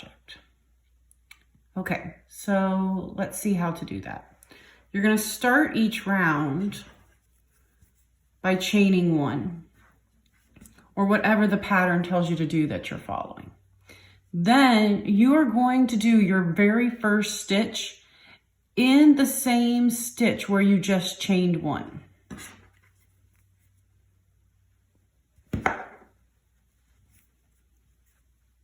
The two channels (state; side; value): identical; both; correlation 1.00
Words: Okay, so let's see how to do that. You're going to start each round by chaining one, or whatever the pattern tells you to do that you're following. Then you are going to do your very first stitch in the same stitch where you just chained one.